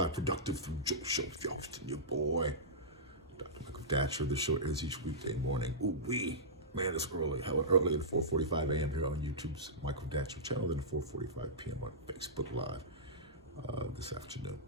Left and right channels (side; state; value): both; normal; correlation -0.15